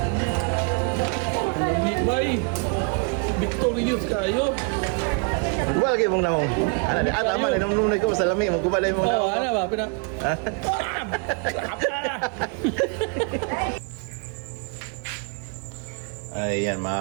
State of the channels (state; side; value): quieter; left; 36.1 dB